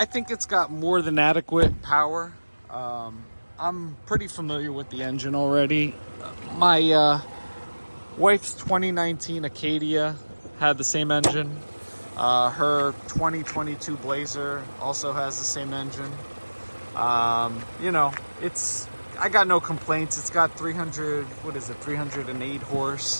think it's got more than adequate power. I'm pretty familiar with the engine already. My wife's 2019 Acadia had the same engine. Her 2022 Blazer also has the same engine. You know, I got no complaints. It's got 308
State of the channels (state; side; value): inverted; both; correlation -1.00